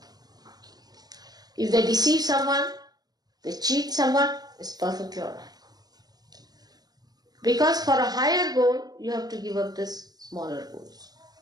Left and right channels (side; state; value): left; late; 0.19 ms